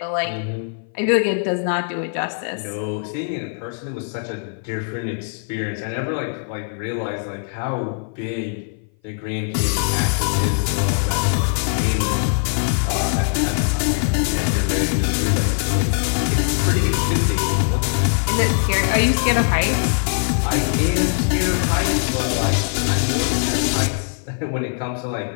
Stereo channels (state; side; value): silent; right; 58 dB below the other